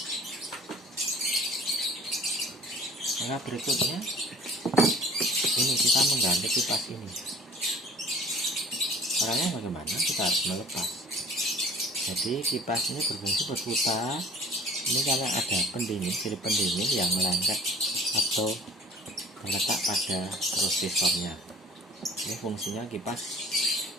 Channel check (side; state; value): both; normal; correlation 0.49